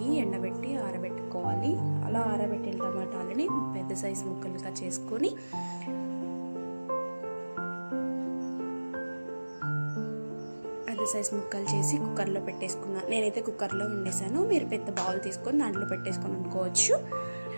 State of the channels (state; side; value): inverted; both; correlation -1.00